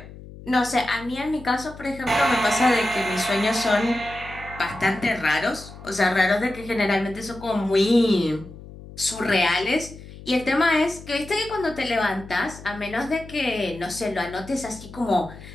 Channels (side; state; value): left; noise; hum, 16 dB below the sound